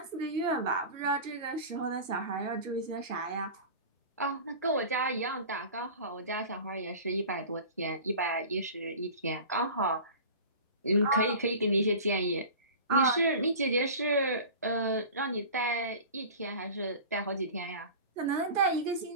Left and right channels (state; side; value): inverted; both; correlation -0.36